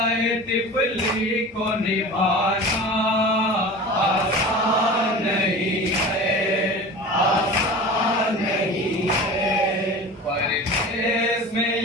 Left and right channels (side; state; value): both; normal; correlation 0.35